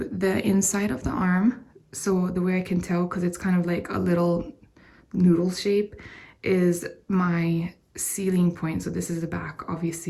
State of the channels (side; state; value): both; identical; correlation 1.00